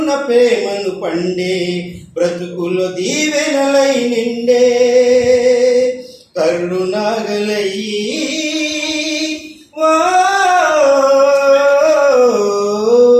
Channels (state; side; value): identical; both; correlation 1.00